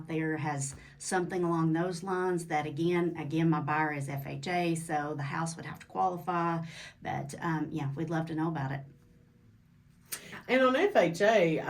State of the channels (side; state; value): both; identical; correlation 1.00